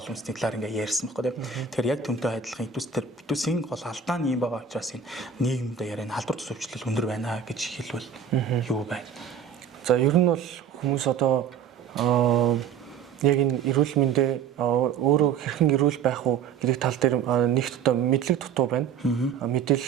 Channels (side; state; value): left; quieter; 7.1 dB